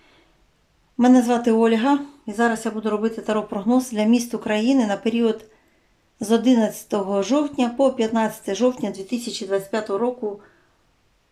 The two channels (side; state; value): both; identical; correlation 1.00